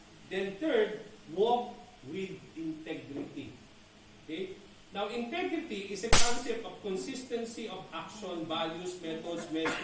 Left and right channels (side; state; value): both; identical; correlation 1.00